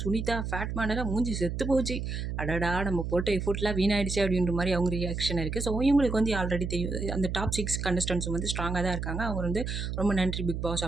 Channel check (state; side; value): noise; right; hum, 4 dB below the sound